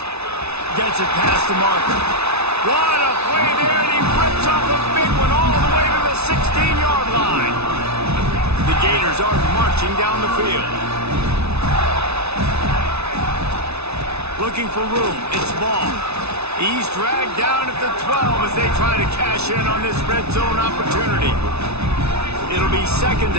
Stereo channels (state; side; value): late; left; 0.80 ms